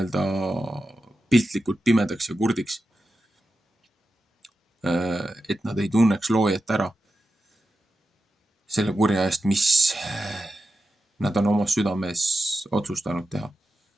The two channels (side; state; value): both; normal; correlation 0.91